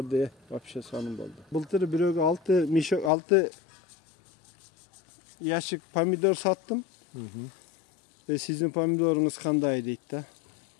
вообще сонун болду. Былтыр бирөөгө 6 ящик помидор саттым. Sizin pomidorunuz kандай deydi da.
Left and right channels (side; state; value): right; drops out; at 3.1 s